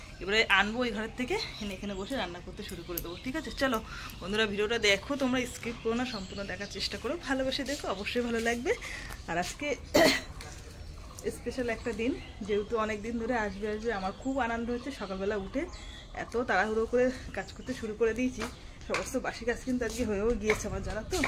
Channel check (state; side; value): identical; both; correlation 1.00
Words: এবারে আনবো ওই ঘরের থেকে, এখানে বসে রান্না করতে শুরু করে দেবো। ঠিক আছে, চলো বন্ধুরা ভিডিওটা দেখো, তোমরা স্কিপ করো না, সম্পূর্ণ দেখার চেষ্টা করো, ভালোবেসে দেখো, অবশ্যই ভালো লাগবে। আর আজকে স্পেশাল একটা দিন, যেহেতু অনেক দিন ধরে আসবে আমার খুব আনন্দ হচ্ছে। সকালবেলা উঠে এত তাড়াহুড়ো করে কাজ করতে শুরু করে দিয়েছি, সমস্ত বাসি কাজ কিন্তু আজকে হয়েও গিয়েছে আমার, জানা তো।